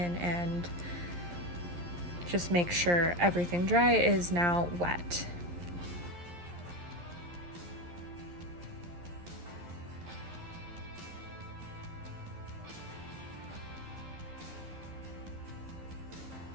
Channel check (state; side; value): late; left; 11 ms